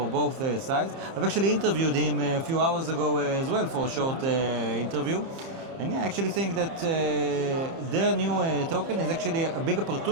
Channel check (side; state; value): left; late; 30 ms